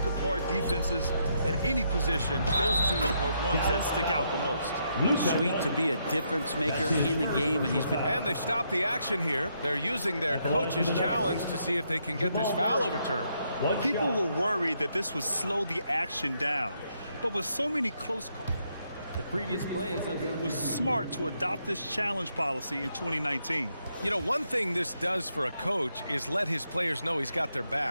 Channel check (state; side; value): inverted; both; correlation -0.77